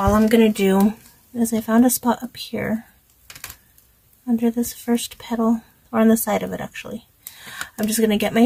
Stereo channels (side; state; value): both; identical; correlation 1.00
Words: I'm going to do is I found a spot up here under this first petal, or on the side of it actually. I'm just going to get my